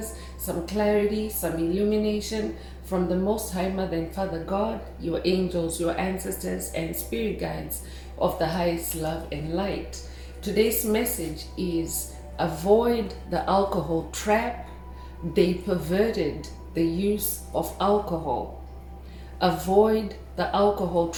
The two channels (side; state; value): both; identical; correlation 1.00